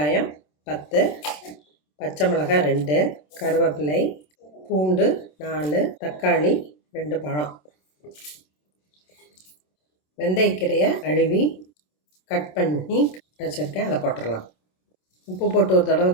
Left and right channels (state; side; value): late; right; 27 ms